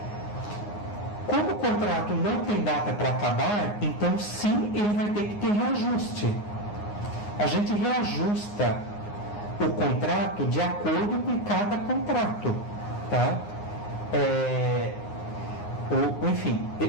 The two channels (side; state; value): right; late; 9.6 ms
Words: Como o contrato não tem data para acabar, então sim, ele vai ter que ter reajuste. A gente reajusta o contrato de acordo com cada contrato, tá? Enfim,